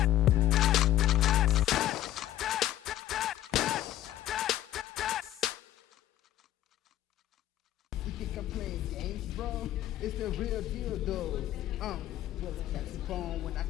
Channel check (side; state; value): right; quieter; 13.0 dB